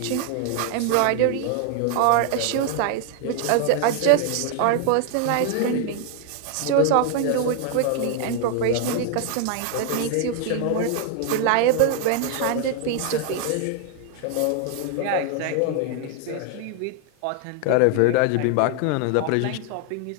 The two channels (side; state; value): both; different; correlation 0.00